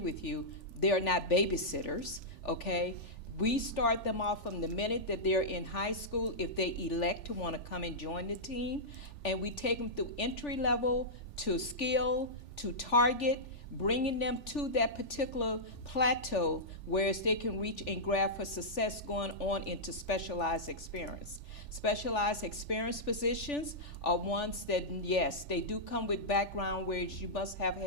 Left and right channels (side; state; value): right; late; 3.4 ms